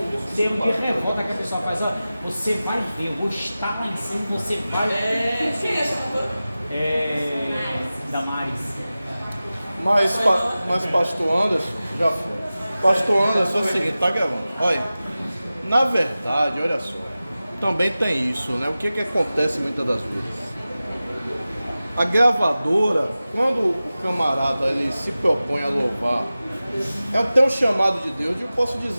termo de revolta que a pessoa faz. Ó, você vai ver, eu vou estar lá em cima, você vai. Quem é essa cantora? Damares. Mas pastor Anderson, já foi. Pastor Anderson é o seguinte, tá gravando. Olha, na verdade, olha só, também tem isso, né? O que acontece muitas das vezes? A gravadora, quando o camarada ele se propõe a louvar, tem um chamado de Deus, eu posso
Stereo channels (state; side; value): inverted; both; correlation -0.96